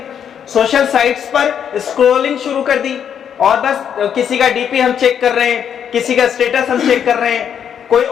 سوشل سائٹس پر اسکرولنگ شروع کر دی, اور بس کسی کا ڈی پی ہم چیک کر رہے ہیں, کسی کا اسٹیٹس ہم چیک کر رہے ہیں, کوئی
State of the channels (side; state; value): right; quieter; 8.4 dB